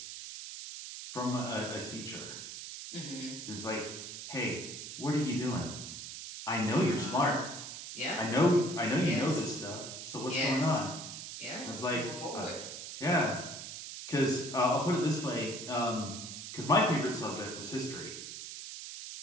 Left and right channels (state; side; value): noise; right; hiss, 9 dB below the sound